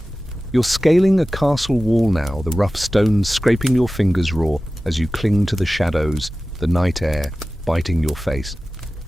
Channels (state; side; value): normal; both; correlation 0.96